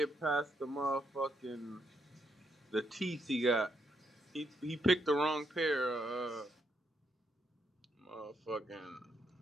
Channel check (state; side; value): normal; both; correlation 0.77